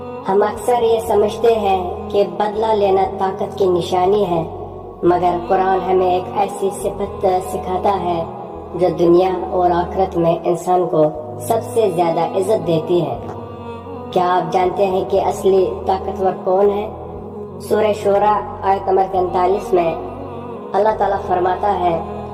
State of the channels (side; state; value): both; identical; correlation 1.00